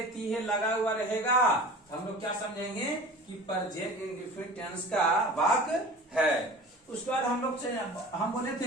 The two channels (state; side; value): normal; both; correlation 0.39